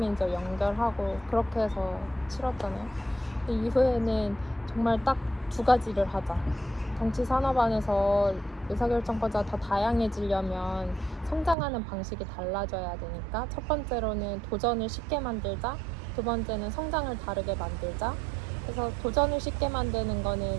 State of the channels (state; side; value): drops out; left; at 11.6 s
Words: 연결하고 그렇게 해서 치렀잖아요. 그 이후에는 정말 딱 2가지를 하자. 정치 산업 안에서 의사결정권자가 더 다양해지려면 성장하는 방식이 달라져야 되니까 첫 번째로는 도전을 쉽게 만들자, 두 번째는 성장을 다르게 만들자. 그래서 도전을 쉽게 만드는